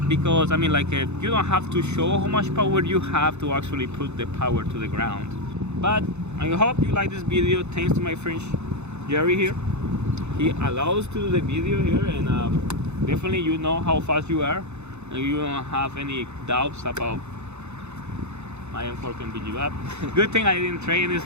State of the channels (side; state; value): left; late; 0.82 ms